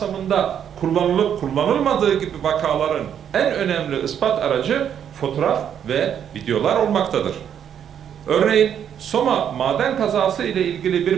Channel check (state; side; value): quieter; left; 8.9 dB